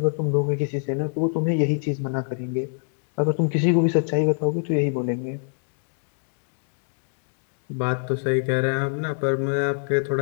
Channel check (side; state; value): right; silent; digital silence